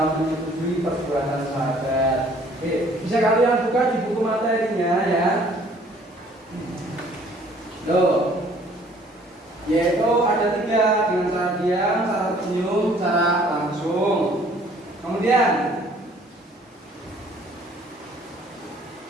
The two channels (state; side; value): normal; both; correlation 0.57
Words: menyetujui perbuatan sahabat. Oke, bisa kalian buka di buku materinya ya. Loh, yaitu ada 3 dengan cara diam, cara tersenyum, cara langsung. langsung. Kemudian